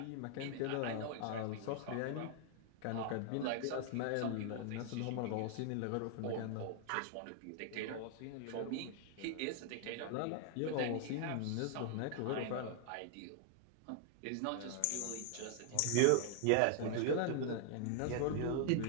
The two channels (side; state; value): both; different; correlation 0.00